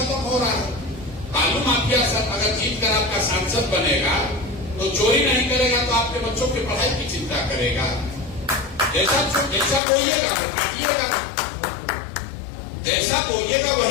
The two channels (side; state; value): right; drops out; at 9.8 s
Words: हो रहा है। बालू माफिया सर अगर जीत कर आपका सांसद बनेगा तो चोरी नहीं करेगा, तो आपके बच्चों की पढ़ाई की चिंता करेगा। जैसा बोइएगा वो काटिएगा, जैसा बोइएगा